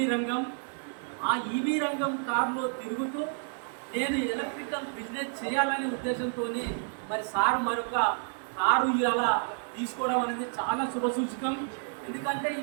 రంగం. ఆ ఈవీ రంగం కారులో తిరుగుతూ నేను ఎలక్ట్రికల్ బిజినెస్ చేయాలనే ఉద్దేశంతో మరి సార్ మరొక కారు ఇవాళ తీసుకోవడం అనేది చాలా శుభసూచకం. ఎందుకంటే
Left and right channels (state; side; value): silent; left; 58 dB below the other